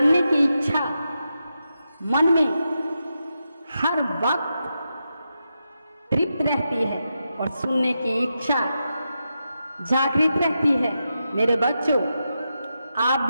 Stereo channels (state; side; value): inverted; both; correlation -0.87